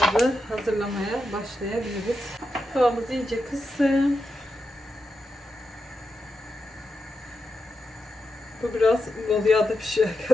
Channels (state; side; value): normal; both; correlation 0.87